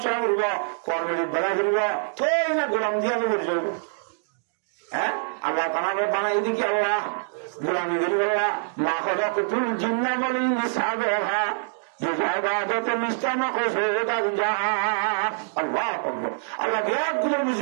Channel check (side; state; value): left; silent; digital silence